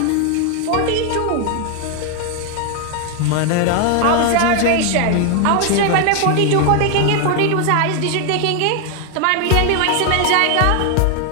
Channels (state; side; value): different; both; correlation 0.01